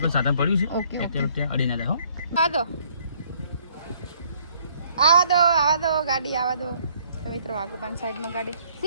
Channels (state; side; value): inverted; both; correlation -0.64